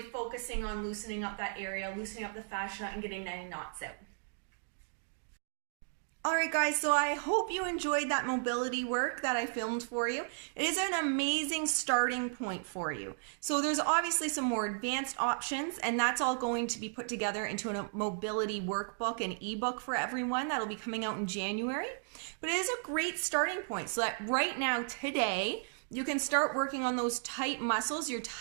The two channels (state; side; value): silent; left; digital silence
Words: focusing on loosening up that area, loosening up the fascia, and getting any knots out. All right, guys, so I hope you enjoyed that mobility work that I filmed for you. It is an amazing starting point for you. So there's obviously some more advanced options, and that's all going to be put together into a mobility workbook and ebook for everyone. That'll be coming out in January. But it is a great starting point so that right now, today, you can start working on those tight muscles, your